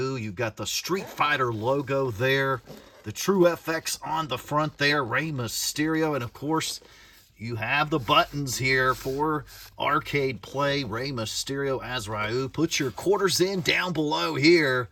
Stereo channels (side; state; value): both; identical; correlation 1.00